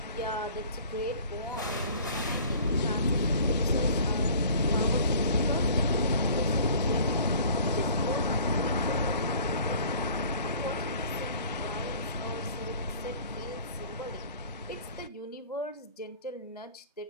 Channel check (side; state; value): both; inverted; correlation -0.49